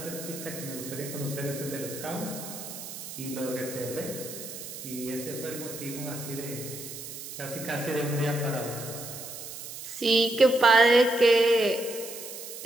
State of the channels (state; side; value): noise; right; hiss, 10 dB below the sound